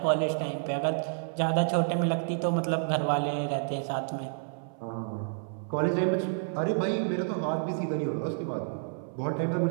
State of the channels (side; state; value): left; silent; 58 dB below the other